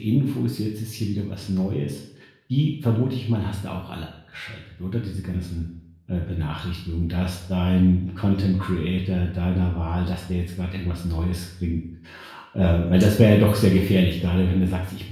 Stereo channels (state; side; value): identical; both; correlation 1.00